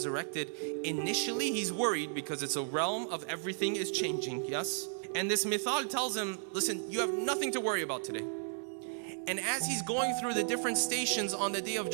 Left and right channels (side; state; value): left; silent; 55 dB below the other